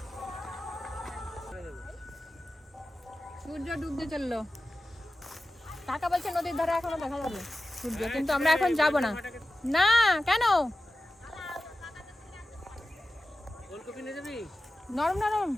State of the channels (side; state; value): both; normal; correlation 0.93